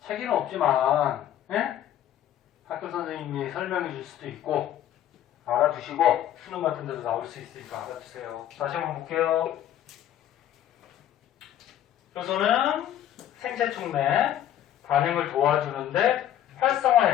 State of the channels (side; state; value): right; quieter; 11.5 dB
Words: 책에는 없지만 예? 학교 선생님이 설명해 줄 수도 있고 알아두시고 수능 같은 데도 나올 수 있으니까 알아두세요. 다시 한번 볼게요. 효소는 생체 촉 내 반응을 도와주는데 활성화